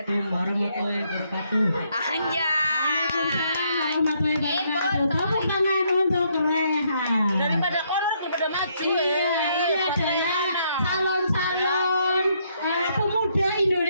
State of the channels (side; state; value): both; inverted; correlation -0.72